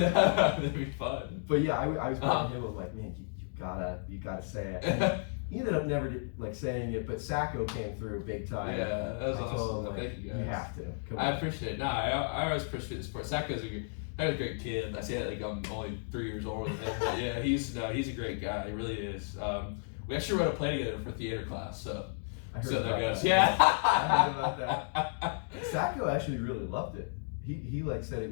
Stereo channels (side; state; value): right; silent; digital silence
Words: be fun. But yeah, I was bugging him. I'm like, man, you gotta say it. And he ended up never saying it, but Sacco came through big time. Yeah, that was awesome. Him, thank you guys. You have to. I appreciate it. No, I always appreciate the sport. Sacco's a great kid. I say that like I'm only 3 years older than him, but yeah, he's a great guy. He really is. We actually wrote a play together for theater class, so that goes. Yeah. I heard about that. Sacco actually really loved it. He like said it